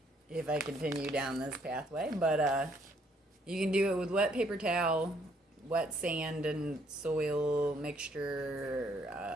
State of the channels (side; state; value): both; normal; correlation 0.67